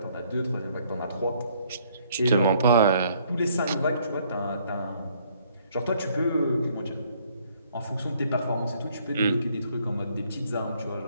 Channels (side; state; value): both; inverted; correlation -0.65